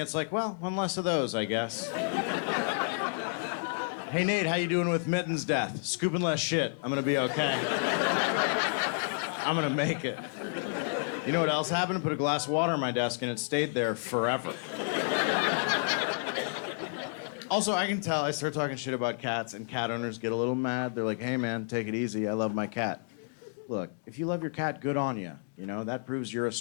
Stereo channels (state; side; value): silent; right; digital silence